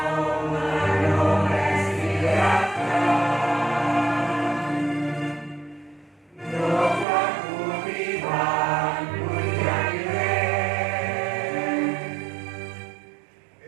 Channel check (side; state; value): left; drops out; at 7.1 s